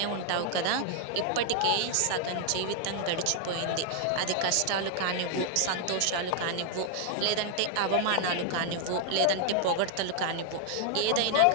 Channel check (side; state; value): both; different; correlation 0.00